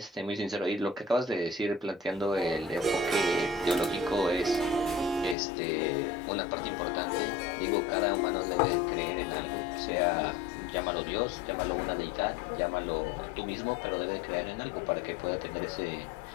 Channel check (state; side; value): drops out; right; at 5.4 s